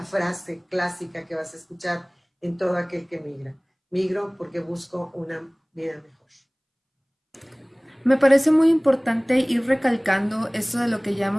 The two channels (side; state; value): both; identical; correlation 1.00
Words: frase clásica que vas a escuchar en todo aquel que migra. Migro porque busco una vida mejor. Me parece muy importante ir recalcando esto de lo que ya